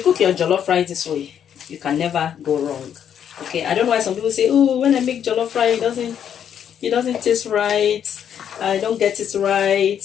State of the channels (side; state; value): right; quieter; 8.9 dB